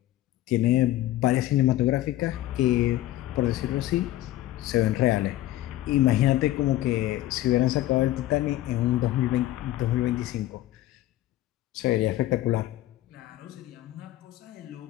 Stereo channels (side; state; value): right; quieter; 14.9 dB